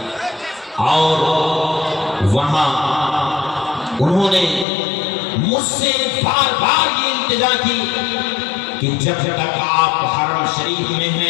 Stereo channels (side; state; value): right; drops out; at 4.7 s